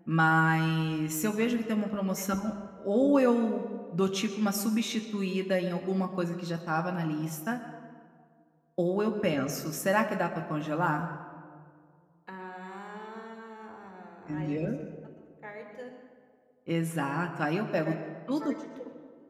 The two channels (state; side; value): identical; both; correlation 1.00